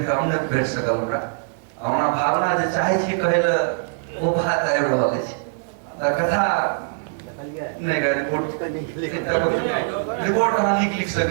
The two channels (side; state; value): left; silent; 64 dB below the other